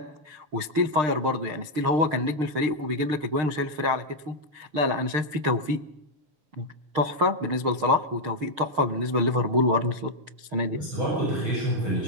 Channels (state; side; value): late; left; 6.6 ms